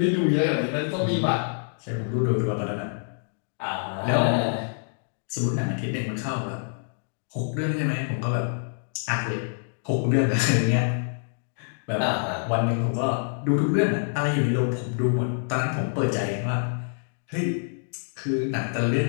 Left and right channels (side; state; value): right; silent; digital silence